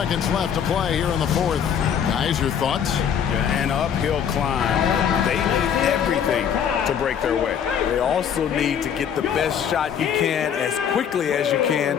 left to play here in the fourth. Guys, your thoughts? Yeah, an uphill climb. They need everything to break their way. They also need to get the best shot you can as quickly as you can,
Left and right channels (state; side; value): quieter; right; 8.2 dB